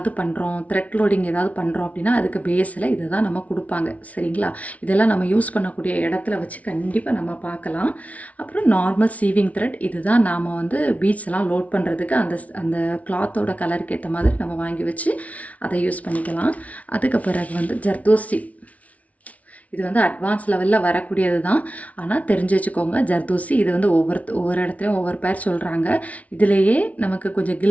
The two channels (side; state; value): right; late; 0.068 ms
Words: பண்ணுறோம், த்ரெட் லோடிங் ஏதாவது பண்ணுறோம் அப்படின்னா அதுக்கு பேஸில் இதை தான் நம்ம கொடுப்பாங்க. சரிங்களா? இதெல்லாம் நம்ம யூஸ் பண்ணக்கூடிய இடத்துல வச்சு கண்டிப்பாக நம்ம பார்க்கலாம். அப்புறம் நார்மல் சீவிங் த்ரெட். இது தான் நாம் வந்து பீட்ஸ் எல்லாம் லோட் பண்ணுறதுக்கு அந்த கிளாத்தோட கலருக்கு ஏற்ற மாதிரி நம்ம வாங்கி வச்சு அதை யூஸ் பண்ணிக்கலாம். அதுக்கு பிறகு வந்து ஜர்தோசி. இது வந்து அட்வான்ஸ் லெவலில் வரக்கூடியது தான். ஆனால் தெரிஞ்சு வச்சுக்கோங்க, ஜர்தோசி. இது வந்து ஒவ்வொரு இடத்துலையும் ஒவ்வொரு பேர் சொல்கிறாங்க. இதிலேயே நமக்கு கொஞ்சம்